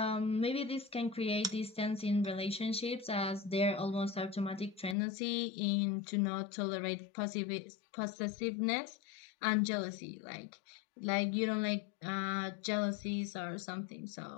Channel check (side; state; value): right; drops out; at 5.0 s